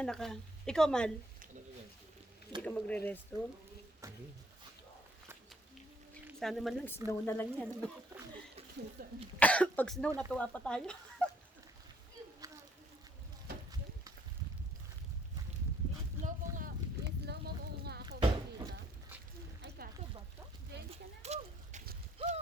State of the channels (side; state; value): both; normal; correlation 0.64